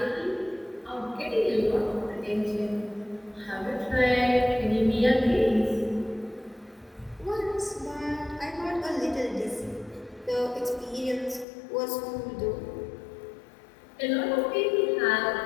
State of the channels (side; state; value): right; drops out; at 11.5 s